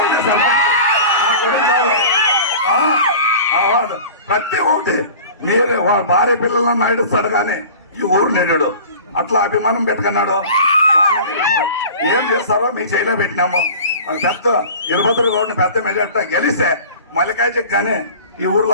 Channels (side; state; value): both; inverted; correlation -0.40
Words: ఉండే సర్పంచ్, మా కుటుంబాలు ప్రతి ఒక్కటి మీరు భార్య పిల్లలను నడుస్తాడు కానీ ఈ ఊరు నెడు అట్లా అభిమానం పెట్టుకున్నాడు. ఏం చేస్తారో మీ చేయిలో పెట్టినాము. పెద్ద వీరభద్ర గౌడ్ని పెద్ద మెజార్టీ గెలిస్తే మల్లికార్జుకి కానీ ఈ ఊర్లో